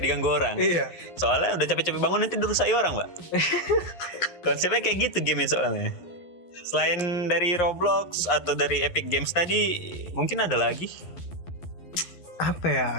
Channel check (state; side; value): late; right; 11 ms